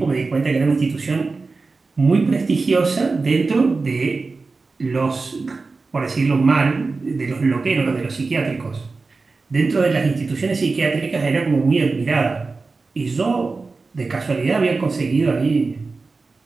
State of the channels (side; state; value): left; quieter; 4.0 dB